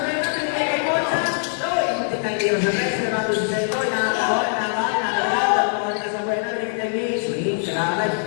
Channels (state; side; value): silent; right; digital silence